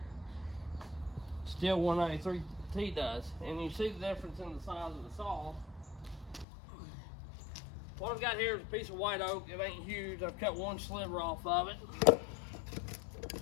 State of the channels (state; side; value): drops out; right; at 6.5 s